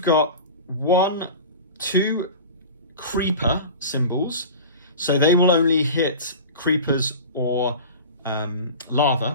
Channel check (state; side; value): inverted; both; correlation -0.35